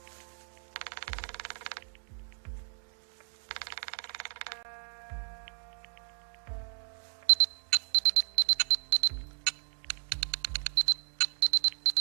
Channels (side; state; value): left; silent; 55 dB below the other